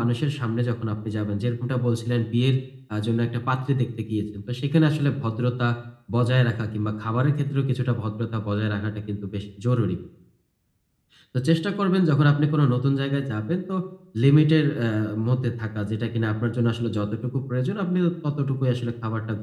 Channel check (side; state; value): both; identical; correlation 1.00